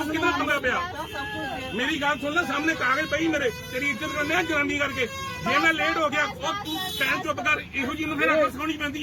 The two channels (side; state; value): both; identical; correlation 1.00